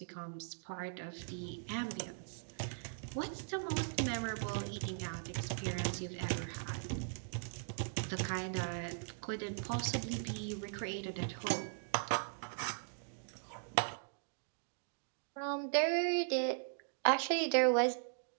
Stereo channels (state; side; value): silent; left; digital silence